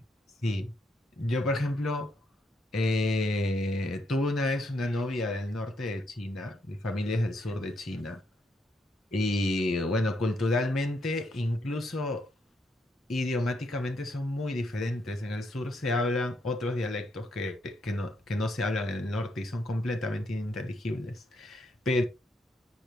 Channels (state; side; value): normal; both; correlation 0.76